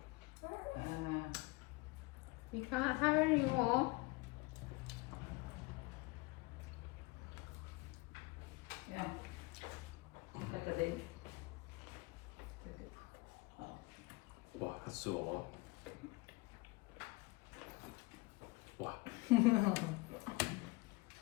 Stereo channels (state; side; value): quieter; right; 24.0 dB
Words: You can't have any more. Yeah. Look at it. Wow, that's still a lot. Wow.